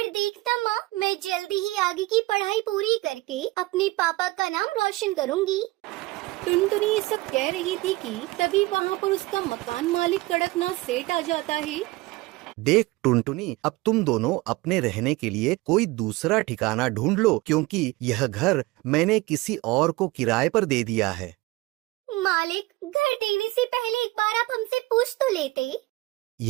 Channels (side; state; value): left; quieter; 20.8 dB